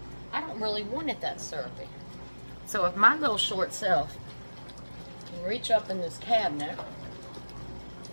I don't really want it that syrupy. So if my little short self can reach up in this cabinet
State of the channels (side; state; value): both; inverted; correlation -1.00